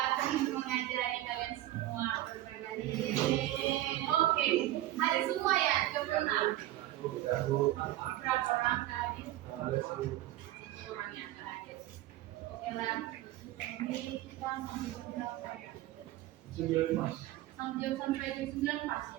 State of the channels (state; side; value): quieter; left; 15.2 dB